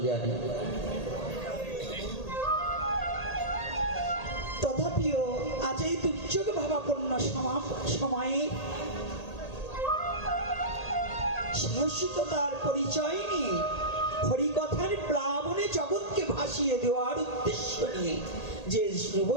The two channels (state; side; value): late; right; 1.8 ms